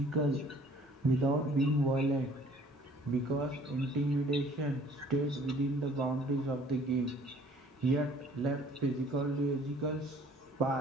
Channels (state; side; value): normal; both; correlation 0.55